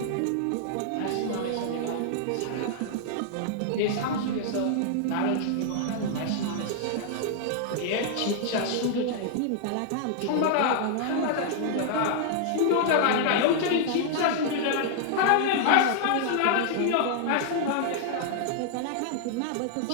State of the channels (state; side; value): different; both; correlation -0.01